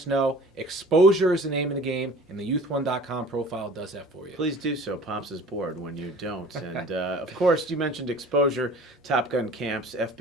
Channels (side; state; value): both; normal; correlation 0.46